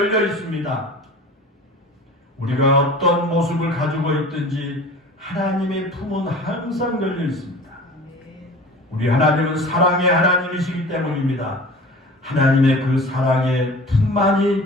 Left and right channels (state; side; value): normal; both; correlation 0.40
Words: 있습니다. 우리가 어떤 모습을 가지고 있든지 하나님의 품은 항상 열려 있습니다. 우리 하나님은 사랑의 하나님이시기 때문입니다. 하나님의 그 사랑의